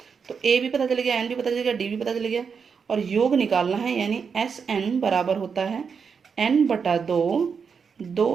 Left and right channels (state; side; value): quieter; left; 6.1 dB